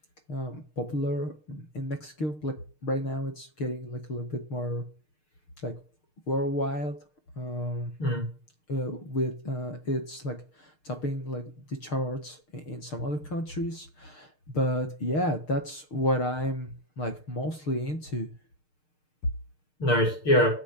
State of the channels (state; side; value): late; right; 6.5 ms